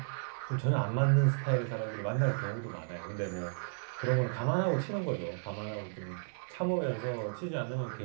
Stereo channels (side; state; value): left; silent; 55 dB below the other